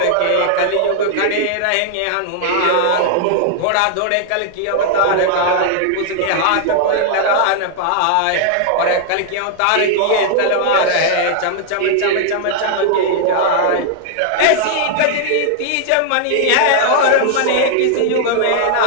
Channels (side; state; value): both; different; correlation -0.01